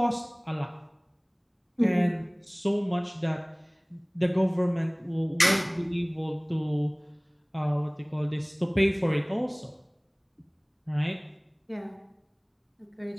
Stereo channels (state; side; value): identical; both; correlation 1.00